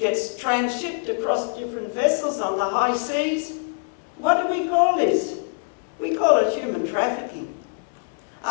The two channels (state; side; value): silent; right; 63 dB below the other